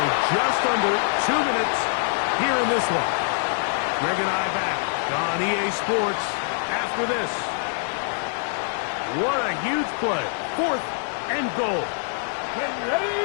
just under 2 minutes here in this one. Greg and I back on EA Sports after this. What a huge play. Fourth and goal. Get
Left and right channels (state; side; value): silent; right; digital silence